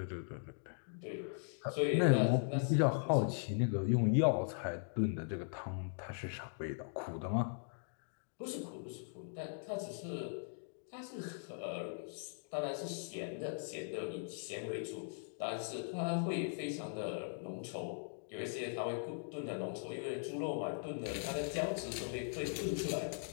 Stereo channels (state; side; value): silent; right; digital silence